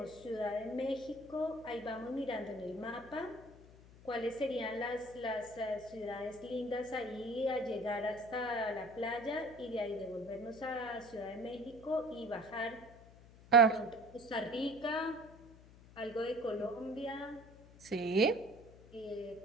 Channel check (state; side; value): noise; left; hum, 21 dB below the sound